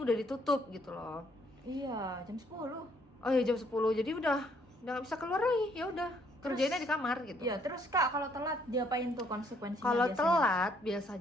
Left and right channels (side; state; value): both; normal; correlation 0.67